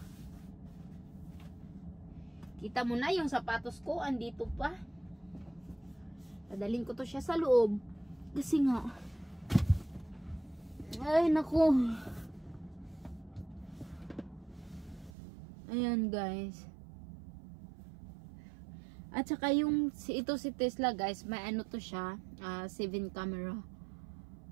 Kita mo na yung sapatos ko, andito pa. Dadalhin ko to siya sa loob. Kasi nga, ay naku. Ayan guys. At saka yung ito si Tesla guys, may ano to siya, 7 camera.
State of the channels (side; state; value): left; drops out; at 15.1 s